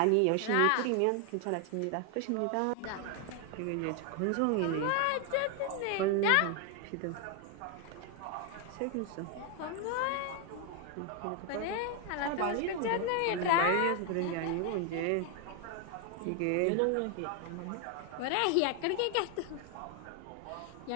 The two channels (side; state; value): both; different; correlation 0.00